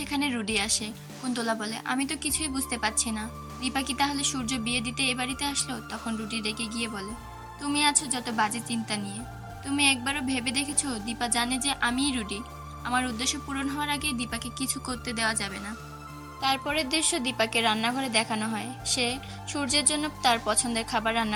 রুডি আসে। কুন্তলা বলে, আমি তো কিছুই বুঝতে পারছি না, দীপা কি তাহলে সূর্য বিয়ে দিতে এ বাড়িতে আসলো? তখন রুডি রেগে গিয়ে বলে, তুমি আছো যত বাজে চিন্তা নিয়ে, তুমি একবারও ভেবে দেখেছো দীপা জানে যে আমিই রুডি? আমার উদ্দেশ্য পূরণ হওয়ার আগে দীপাকে কিছু করতে দেওয়া যাবে না। তারপরের দৃশ্য দীপাকে রান্নাঘরে দেখানো হয়, সে সূর্যের জন্য তার পছন্দের খাবার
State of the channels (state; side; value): identical; both; correlation 1.00